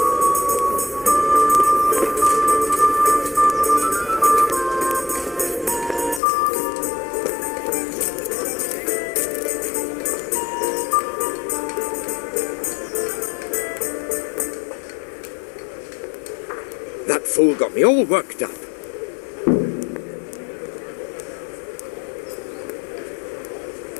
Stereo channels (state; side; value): drops out; right; at 6.2 s